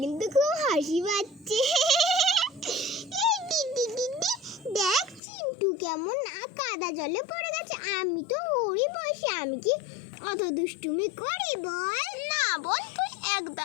কিন্তু খুব হাসি পাচ্ছে। দেখ চিন্টু কেমন কাদা জলে পড়ে গেছে, আমি তো ওরই বসে, আমি কি অত দুষ্টুমি করি বল? না বল, তুই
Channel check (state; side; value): drops out; right; at 5.2 s